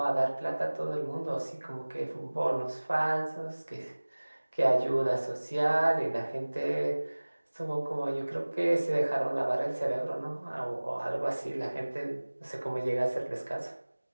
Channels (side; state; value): both; inverted; correlation -1.00